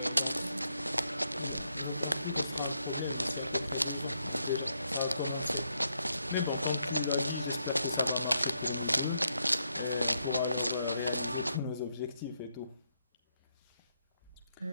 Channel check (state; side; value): inverted; both; correlation -0.79